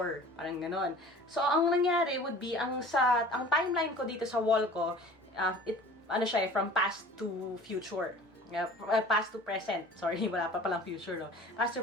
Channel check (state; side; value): normal; both; correlation 0.44